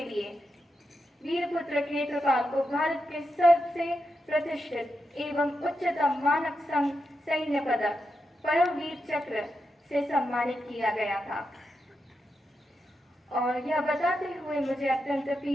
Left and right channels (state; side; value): normal; both; correlation 0.86